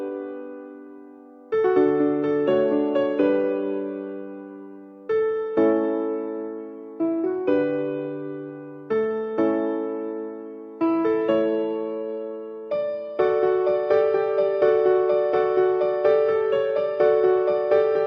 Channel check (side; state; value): both; identical; correlation 1.00